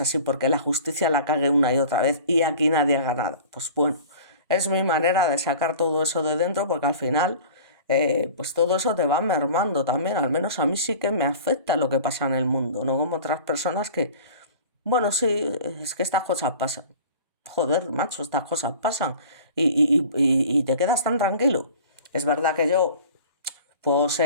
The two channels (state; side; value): inverted; both; correlation -0.42